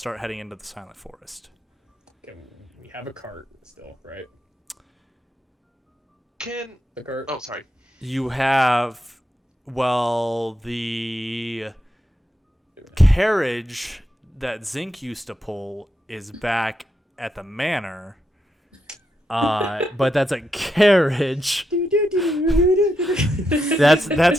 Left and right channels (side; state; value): both; normal; correlation 0.83